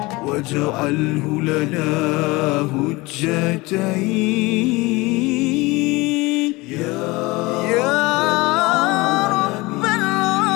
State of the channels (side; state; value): right; quieter; 22.7 dB